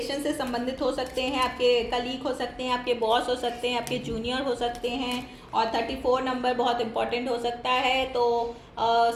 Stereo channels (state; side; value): identical; both; correlation 1.00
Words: से संबंधित हो सकते हैं, आपके कलीग हो सकते हैं, आपके बॉस हो सकते हैं, आपके जूनियर हो सकते हैं। और 34 नंबर बहुत इंपॉर्टेंट हो सकता है, तो